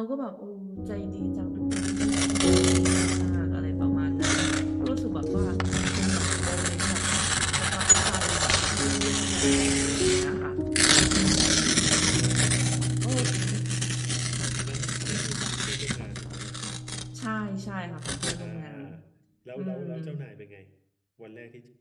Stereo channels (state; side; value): identical; both; correlation 1.00